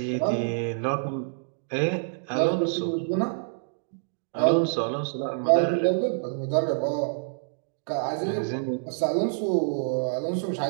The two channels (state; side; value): silent; left; digital silence